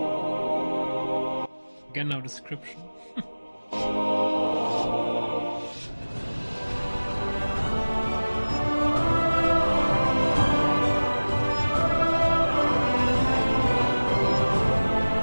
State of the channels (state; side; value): inverted; both; correlation -1.00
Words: Again, no description.